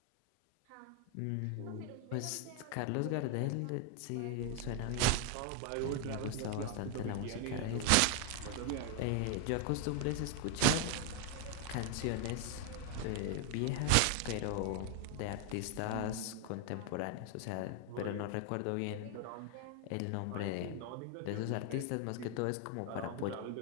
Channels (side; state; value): both; different; correlation 0.01